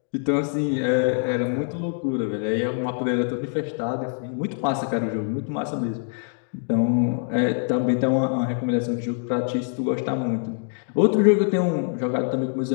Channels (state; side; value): silent; right; 56 dB below the other